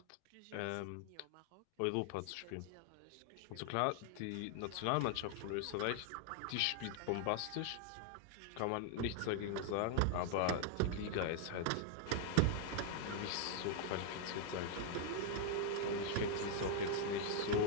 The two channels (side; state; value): both; different; correlation 0.00